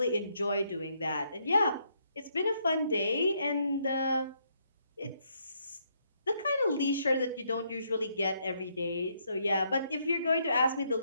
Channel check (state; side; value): inverted; both; correlation -0.73